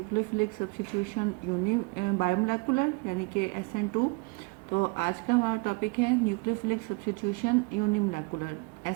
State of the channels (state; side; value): quieter; left; 28.9 dB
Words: सब्स्टिट्यूशन यूनी बायोमोलेकुलर यानी कि SN2। तो आज का हमारा टॉपिक है न्यूक्लियोफिलिक सब्स्टिट्यूशन यूनिमोलेकुलर